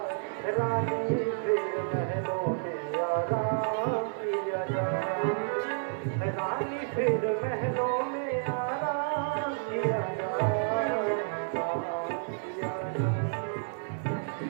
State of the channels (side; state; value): left; silent; 58 dB below the other